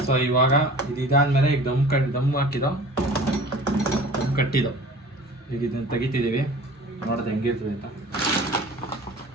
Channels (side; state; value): both; normal; correlation 0.43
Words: ಸೊ ಇವಾಗ ಇದಾದ್ಮೇಲೆ ಈಗ ದಮ್ ಹಾಕಿದೋ, ದಮ್ ಕಟ್ಟಿದೋ. ಈಗ ಇದನ್ನು ತೆಗಿತಿದ್ದೀವಿ, ನೋಡಿದೆ ಹೆಂಗಿರ್ತದೆ ಅಂತ.